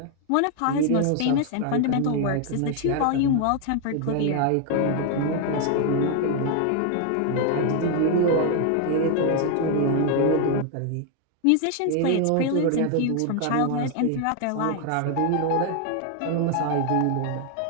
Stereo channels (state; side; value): different; both; correlation 0.00